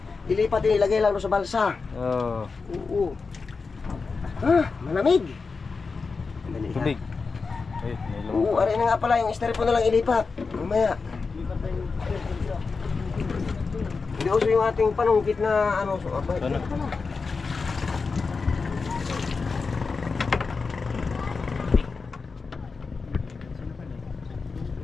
ilipat din, ilagay lang doon sa balsa. Oo. Oo. Malamig. Madali lang. Tubig. Ay, may Oo, lumang. aray na nga pala, yung styrofoam na lang ilipat. Mamaya. Hindi uso yung ating panungkit na ano. So, abay, Ano? pala.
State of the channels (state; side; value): quieter; right; 4.6 dB